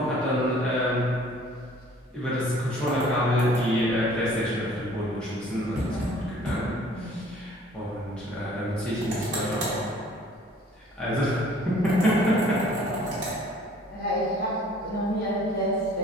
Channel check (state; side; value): normal; both; correlation 0.54